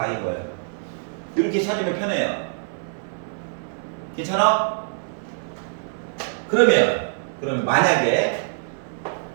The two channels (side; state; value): left; silent; 57 dB below the other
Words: 거예요. 이렇게 찾으면 편해요. 괜찮아? 그러면 만약에